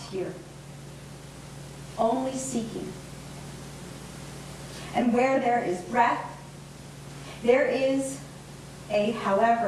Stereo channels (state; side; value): identical; both; correlation 1.00